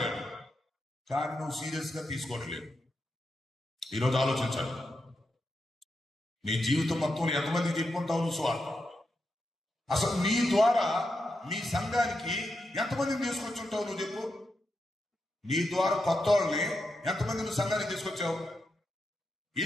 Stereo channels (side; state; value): both; normal; correlation 0.86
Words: కానీ నువ్వు సీరియస్ గా తీసుకోవట్లేదు. ఈరోజు ఆలోచించాలి, నీ జీవితం మొత్తం ఎంతమందికి చెప్పుకుంటావు నువ్వు సువార్త? అసలు నీ ద్వారా నీ సంఘానికి ఎంతమందిని తీసుకొచ్చి ఉంటావు నువ్వు చెప్పు. నీ ద్వారా కొత్త వాళ్ళని ఎంతమంది నువ్వు సంఘానికి తీసుకొచ్చావు?